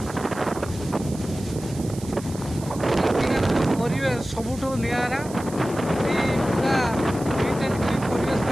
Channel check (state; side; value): noise; right; hiss, 17 dB below the sound